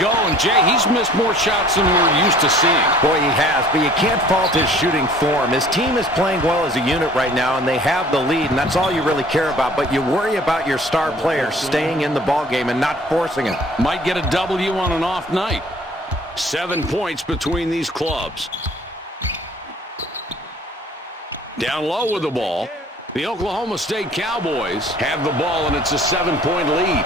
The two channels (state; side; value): normal; both; correlation 0.52